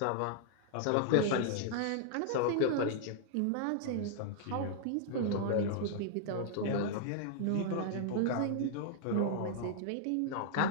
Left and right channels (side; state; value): both; different; correlation -0.01